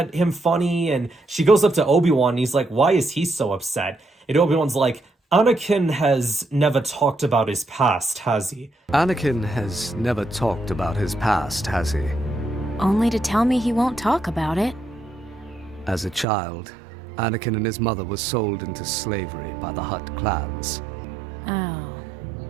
him funny, and she goes up to Obi-Wan, and he's like, why is he so upset? And Obi-Wan's like, Anakin has never talked about his past, has he? Anakin has never talked about his past, has he? Only to tell me he won't talk about it. As a child, Anakin and his mother were sold into slavery by the Hutt clans. Oh.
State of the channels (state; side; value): drops out; left; at 16.2 s